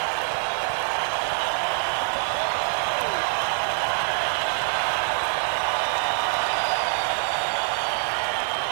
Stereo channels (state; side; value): silent; left; 62 dB below the other